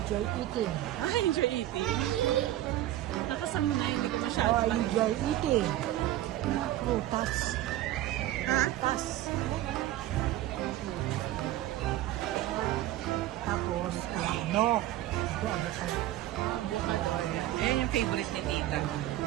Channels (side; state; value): left; quieter; 14.3 dB